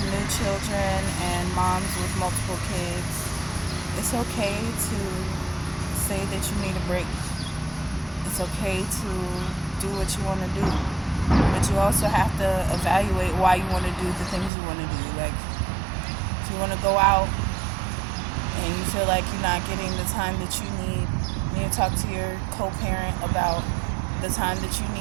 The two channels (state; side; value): drops out; left; at 14.5 s